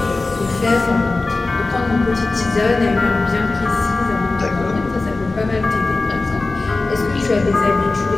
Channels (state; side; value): quieter; right; 3.4 dB